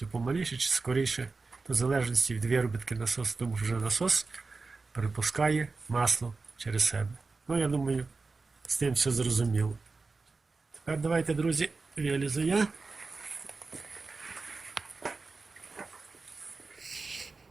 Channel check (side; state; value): left; quieter; 4.0 dB